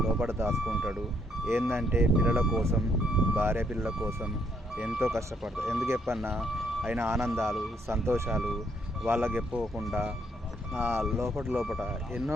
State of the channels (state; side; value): normal; both; correlation 0.71